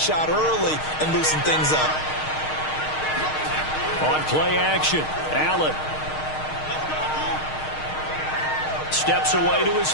shot early and loosen things up. On play action, Allen steps away to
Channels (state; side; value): late; right; 6.4 ms